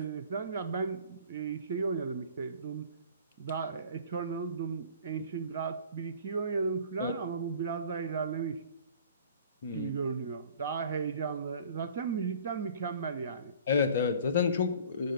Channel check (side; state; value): both; inverted; correlation -0.47